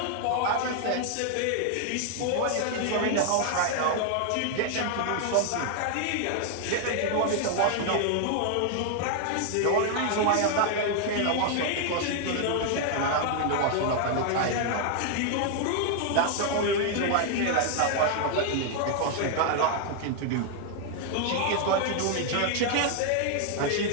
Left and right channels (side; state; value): both; different; correlation 0.00